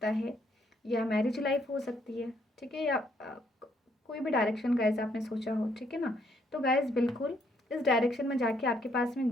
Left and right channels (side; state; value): both; normal; correlation 0.70